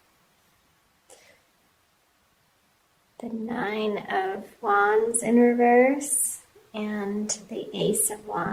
The Nine of Wands in reverse. And the Ace of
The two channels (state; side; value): identical; both; correlation 1.00